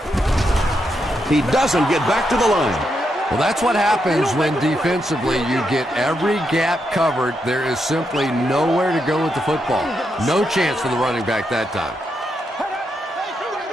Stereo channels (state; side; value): normal; both; correlation 0.82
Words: He doesn't get back to the line. Well, that's what happens when defensively you get every gap covered. There is simply nowhere to go with the football. No chance for the running back that time.